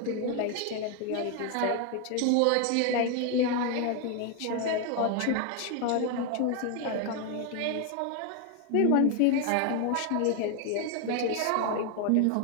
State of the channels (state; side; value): different; both; correlation 0.01